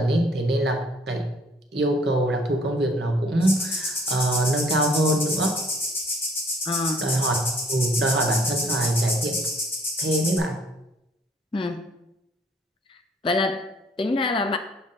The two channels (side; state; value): both; normal; correlation 0.59